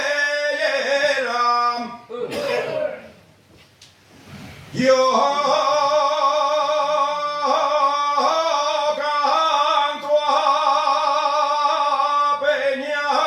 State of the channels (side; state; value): both; identical; correlation 1.00